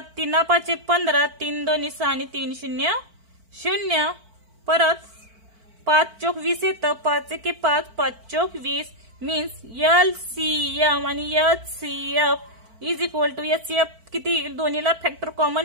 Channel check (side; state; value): left; late; 4.5 ms